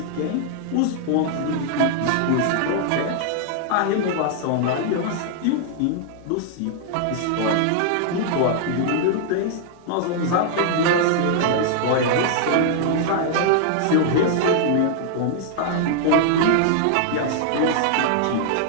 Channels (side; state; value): both; different; correlation -0.01